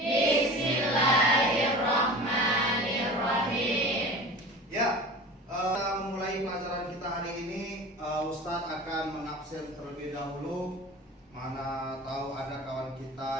Ya, kita memulai pelajaran kita hari ini. Ustadz akan mengabsen terlebih dahulu. Mana tahu ada kawan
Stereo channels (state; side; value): normal; both; correlation 0.36